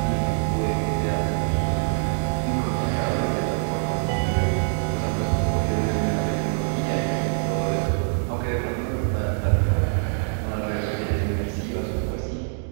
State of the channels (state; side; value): silent; left; 62 dB below the other